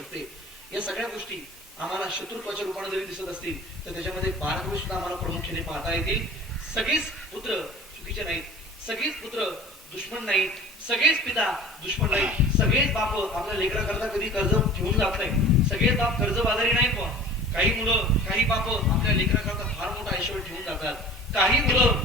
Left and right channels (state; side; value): normal; both; correlation 0.42